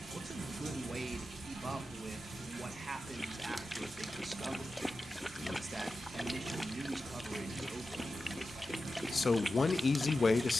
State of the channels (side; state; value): both; normal; correlation 0.92